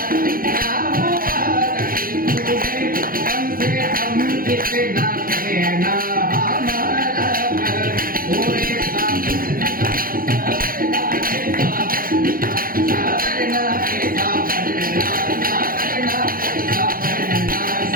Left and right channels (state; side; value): late; left; 0.42 ms